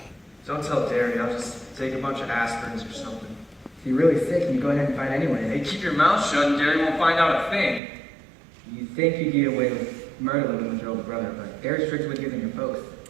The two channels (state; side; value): drops out; left; at 7.8 s